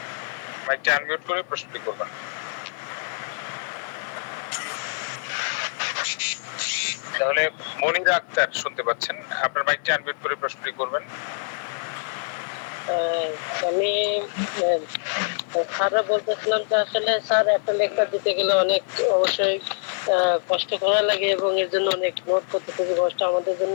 মাইকটা আনমিউট করে প্রশ্নটি করবেন। তাহলে মনিরা আক্তার শুনতে পাচ্ছেন, আপনার মাইকটা আনমিউট করে প্রশ্নটি করবেন। আমি স্যাররা বলতেছিলাম যে আসলে স্যার একটা লেকচার দিতে গেলে অনেক অবশ্যই কষ্ট করা লাগে, এবং এর জন্য অনেক নোট করতে খুবই কষ্ট। আমাদের জন্য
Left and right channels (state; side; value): silent; right; digital silence